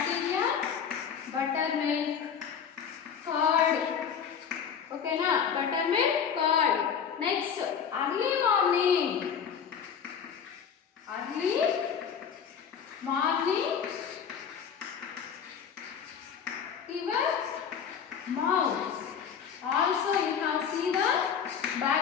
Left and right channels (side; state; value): right; quieter; 7.4 dB